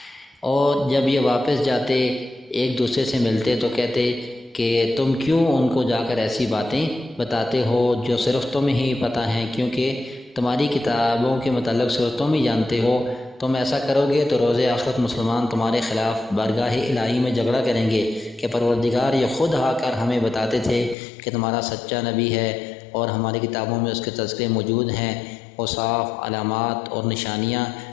اور جب یہ واپس جاتے ایک دوسرے سے ملتے تو کہتے کہ تم کیوں ان کو جا کر ایسی باتیں بتاتے ہو جو صرف تمہیں ہی پتہ ہیں، کیونکہ تمہاری کتابوں کے متعلق صرف تم ہی جانتے ہو۔ تم ایسا کرو گے تو روز آخرت مسلمان تمہارے خلاف بارگاہ الہی میں جھگڑا کریں گے کہ پروردگار یہ خود آ کر ہمیں بتاتے تھے کہ تمہارا سچا نبی ہے اور ہماری کتابوں میں اس کے تذکرے موجود ہیں، اوصاف، علامات اور نشانیاں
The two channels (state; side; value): drops out; right; at 21.0 s